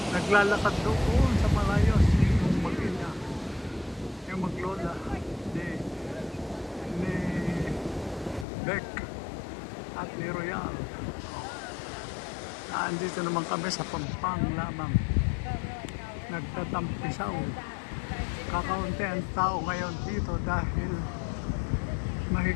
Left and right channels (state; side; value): drops out; right; at 8.5 s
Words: naglalakad doon sa malayo yung mag-ina, yung maglola ni Beck at ni Royal. Nandito naman kami sa Pampang lamang. Nagtatampisaw. Kakaunti ang tao ngayon dito dahil